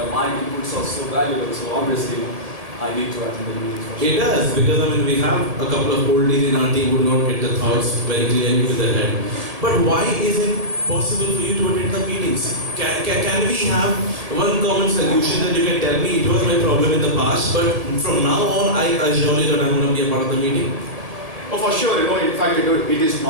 my inputs are so valuable, so obviously I need to attend the meetings. For sure. It does, because we have a couple of oldies in our team who do not get the thoughts very clearly to their head. But why is it possible for you to attend the meetings? Can we have one common solution that you can tell me it was my problem in the past, but from now on I assure you that I'm going to be a part of the meeting? Oh, for sure, in fact, it is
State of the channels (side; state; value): left; late; 1.7 ms